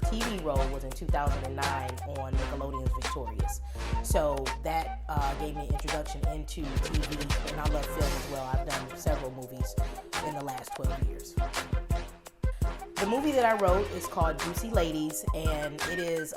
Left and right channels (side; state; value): both; identical; correlation 1.00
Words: TV role was in 2009 on Nickelodeon's Victorious. So that gave me an introduction into TV, and I love film as well. I've done several movies in the last 12 years. The movie that I wrote is called Juicy Ladies, and it is